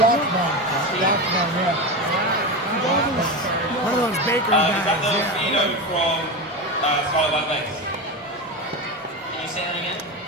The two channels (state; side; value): normal; both; correlation 0.20